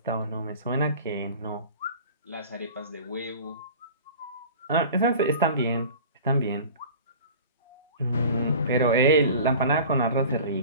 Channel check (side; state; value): both; inverted; correlation -0.39